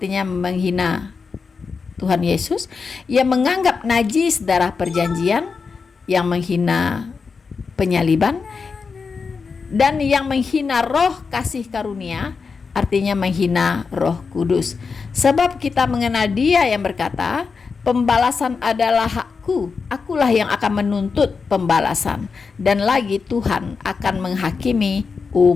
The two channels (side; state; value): right; quieter; 5.1 dB